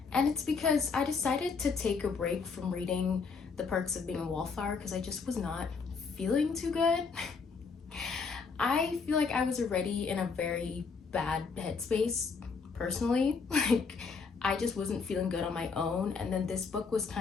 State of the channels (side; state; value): right; quieter; 5.1 dB